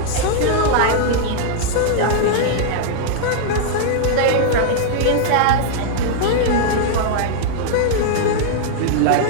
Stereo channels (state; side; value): different; both; correlation -0.01